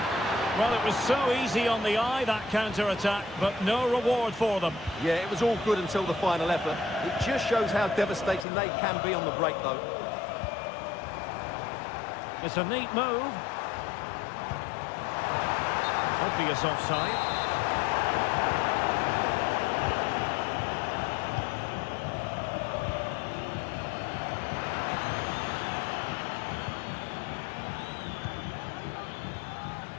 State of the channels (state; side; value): drops out; right; at 8.5 s